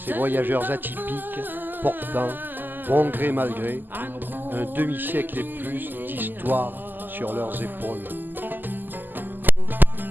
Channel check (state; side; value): late; left; 0.089 ms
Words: voyageurs atypiques, portant, bon gré mal gré, un demi-siècle et plus d'histoire sur leurs épaules?